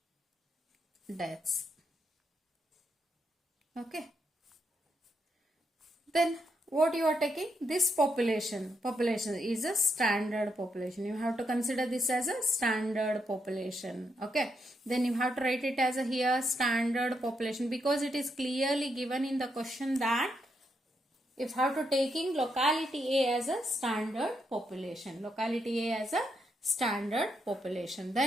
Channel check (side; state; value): both; normal; correlation 0.80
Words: deaths. Okay, then what you are taking, this population is a standard population. You have to consider this as a standard population. Okay, then you have to write it as a here standard population, because it is clearly given in the question that if you have to taking locality A as a standard population, locality A as a standard population,